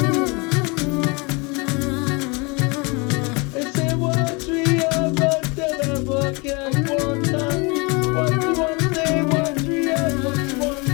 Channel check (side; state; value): right; quieter; 28.8 dB